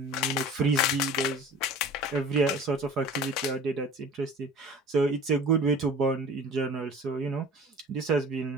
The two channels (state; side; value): normal; both; correlation 0.42